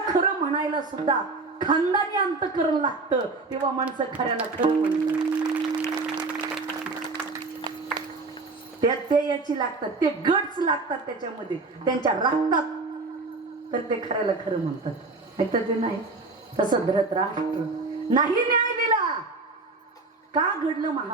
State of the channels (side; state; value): left; quieter; 3.7 dB